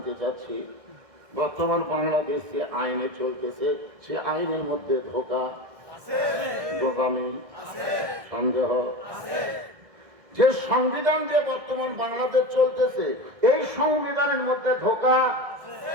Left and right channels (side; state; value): left; late; 1.6 ms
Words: চাচ্ছি, বর্তমান বাংলাদেশ যে আইনে চলতেছে সে আইনের মধ্যে ধোঁকা, গোজামিল, সন্দেহ। যে সংবিধান দিয়ে বর্তমান বাংলাদেশ চলতেছে এই সংবিধানের মধ্যে ধোঁকা,